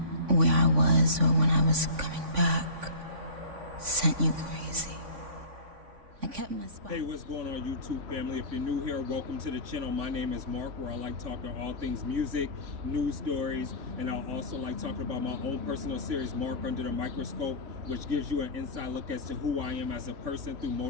where I was or when I was coming back sent you crazy. I kept my spot. Hey, what's going on, YouTube family? If you're new here, welcome to the channel. My name is Mark, where I like talking all things music, news stories, and I also like talking about my own personal series, Mark Under the Microscope, which gives you an inside look as to who I am as a person through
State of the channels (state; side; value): late; left; 3.5 ms